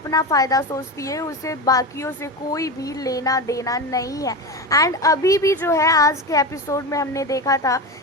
फ़ायदा सोचती है, उसे बाकियों से कोई भी लेना देना नहीं है। एंड अभी भी जो है आज के एपिसोड में हमने देखा था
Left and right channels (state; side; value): normal; both; correlation 0.21